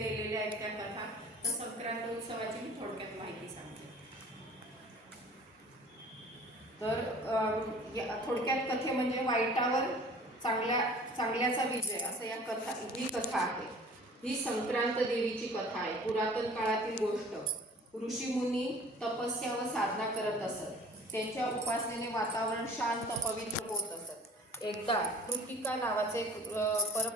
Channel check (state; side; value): normal; both; correlation 0.48